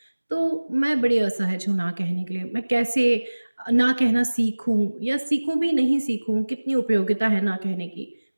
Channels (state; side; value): inverted; both; correlation -1.00